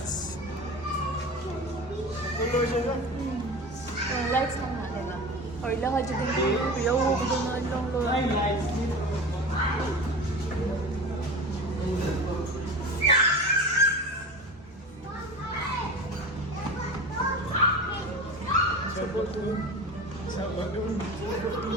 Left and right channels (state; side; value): normal; both; correlation 0.31